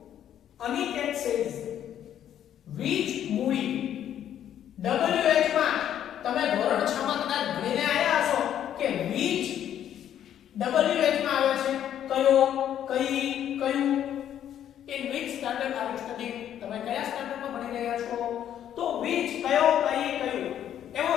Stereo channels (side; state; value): right; quieter; 10.4 dB